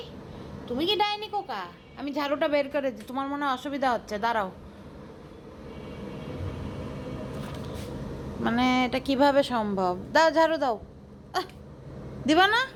তুমি কি ডাইনি কোকা? আমি ঝাড়ুটা বের করে দিই, তোমার মনে হয় অসুবিধা হচ্ছে, দাঁড়াও। মানে এটা কিভাবে সম্ভব? দাও ঝাড়ু দাও। আহ, দিবা না?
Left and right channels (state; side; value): identical; both; correlation 1.00